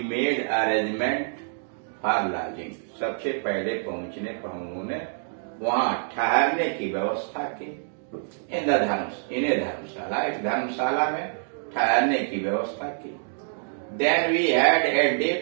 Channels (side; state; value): left; silent; digital silence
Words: made arrangement for lodging, सबसे पहले पहुंचने पर हम लोगों ने वहां ठहरने की व्यवस्था की। इन्हें धर्मशाला, एक धर्मशाला में ठहरने की व्यवस्था की। Then we had a